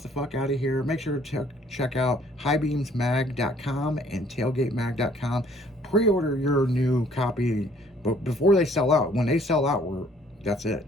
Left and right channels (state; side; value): normal; both; correlation 0.60